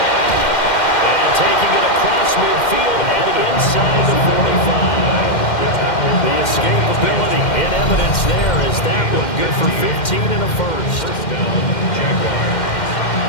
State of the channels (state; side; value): late; right; 2.1 ms